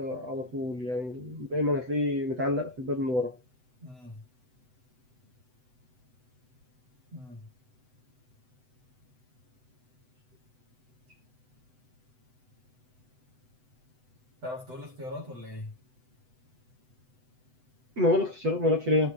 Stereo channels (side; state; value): left; late; 7.9 ms